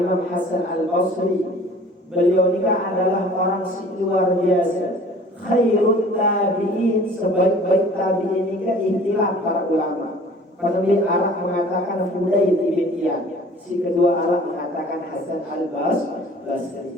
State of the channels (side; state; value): both; normal; correlation 0.48